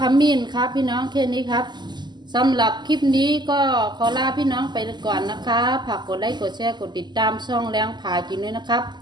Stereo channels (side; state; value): left; late; 0.21 ms